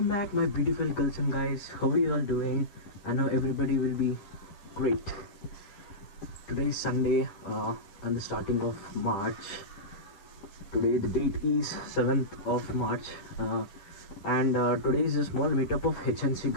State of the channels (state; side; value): late; right; 10 ms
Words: back my beautiful girls and guys. How are you all doing? I know everybody will be great. Today is Sunday and the starting of March. Today the date is 7th of March and today is a small meetup of HNC